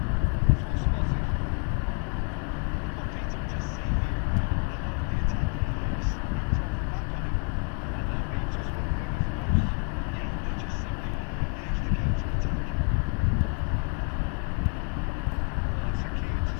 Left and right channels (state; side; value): quieter; right; 38.1 dB